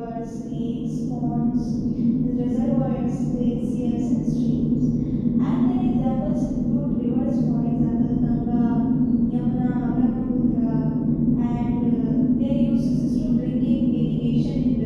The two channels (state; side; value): identical; both; correlation 1.00